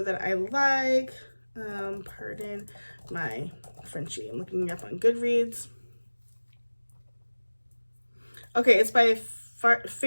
that I like. Pardon My Frenchie. I'm looking it up on Goodreads. Okay, it's by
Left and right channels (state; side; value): inverted; both; correlation -1.00